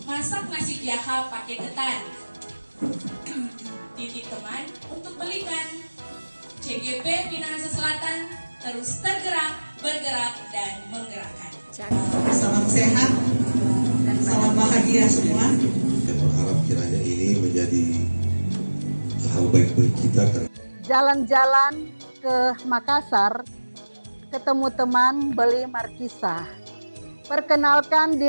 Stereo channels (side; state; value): both; inverted; correlation -1.00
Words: masak nasi jaha pakai ketan. Titip teman untuk belikan. CGP Minahasa Selatan terus tergerak, bergerak, dan menggerakkan. Salam sehat, salam bahagia semua. Saya berharap kiranya ini menjadi hal baik bagi kita. Jalan-jalan ke Makassar, ketemu teman beli markisa. Perkenalkan